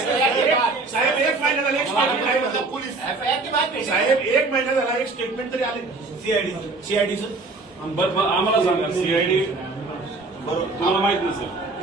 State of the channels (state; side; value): quieter; left; 3.5 dB